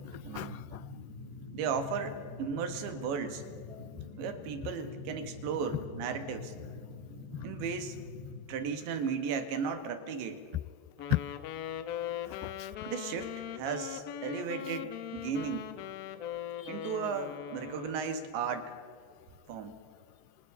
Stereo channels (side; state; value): left; late; 14 ms